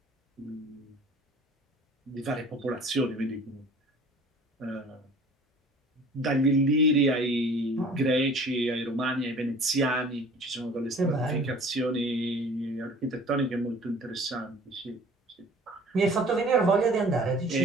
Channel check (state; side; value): normal; both; correlation 0.48